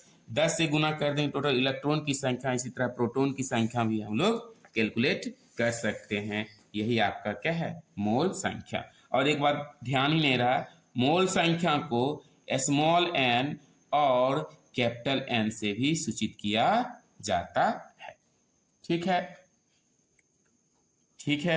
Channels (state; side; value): identical; both; correlation 1.00